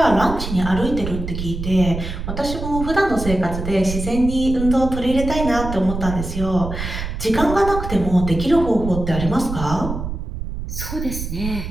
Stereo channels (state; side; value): noise; right; rumble, 6 dB below the sound